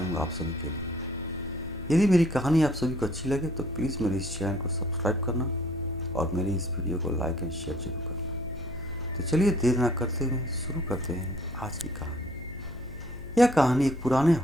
हूँ आप सभी के लिए। यदि मेरी कहानी आप सभी को अच्छी लगे तो प्लीज़ मेरे इस चैनल को सब्सक्राइब करना और मेरी इस वीडियो को लाइक एंड शेयर जरूर करना। तो चलिए देर ना करते हुए शुरू करते हैं आज की कहानी। यह कहानी एक पुराने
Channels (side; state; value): left; noise; hum, 16 dB below the sound